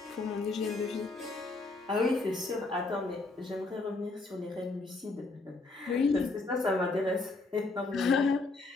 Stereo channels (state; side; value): quieter; right; 3.4 dB